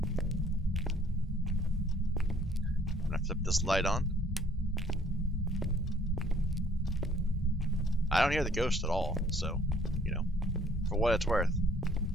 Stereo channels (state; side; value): normal; both; correlation 0.59